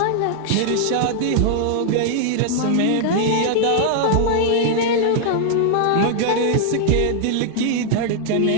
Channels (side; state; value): both; different; correlation 0.00